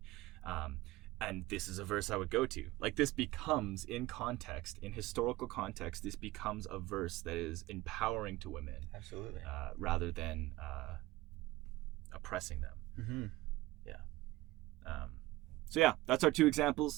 And this is a verse I would go to. Like, this becomes, in context, in historical context, this becomes a verse that is empowering to women. Absolutely. Rather than oppressing them. So yeah, that's our two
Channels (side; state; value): left; quieter; 18.7 dB